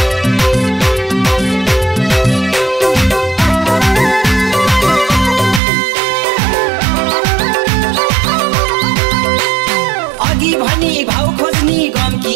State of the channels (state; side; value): drops out; left; at 5.6 s